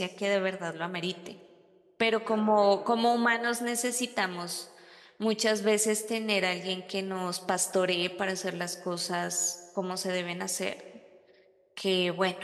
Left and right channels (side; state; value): both; identical; correlation 1.00